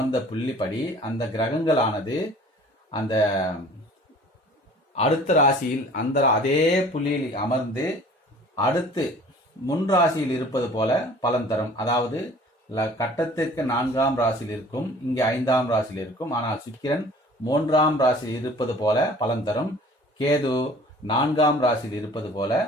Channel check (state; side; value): normal; both; correlation 0.49